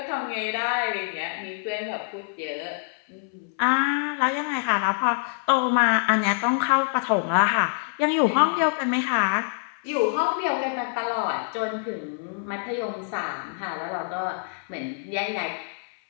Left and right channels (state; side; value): silent; right; 61 dB below the other